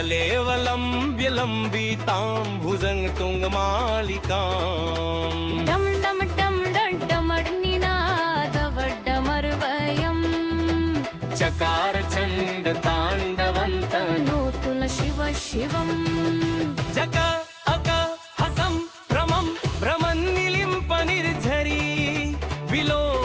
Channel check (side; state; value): both; identical; correlation 1.00